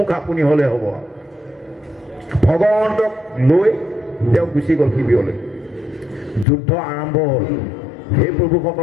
আপুনি হ'লে হ'ব ভগৱন্তক লৈ তেওঁ গুচি গ'ল শিবিৰলৈ যুদ্ধ আৰম্ভ হ'ল হে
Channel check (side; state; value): right; drops out; at 6.5 s